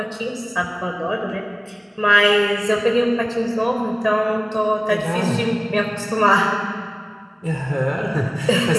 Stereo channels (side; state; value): both; identical; correlation 1.00